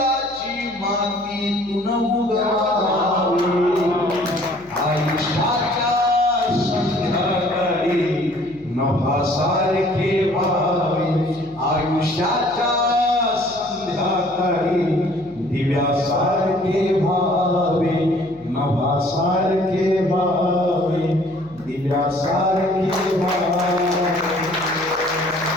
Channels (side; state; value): left; noise; hum, 25 dB below the sound